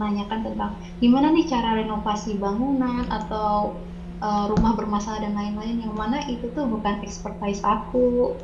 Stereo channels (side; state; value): both; identical; correlation 1.00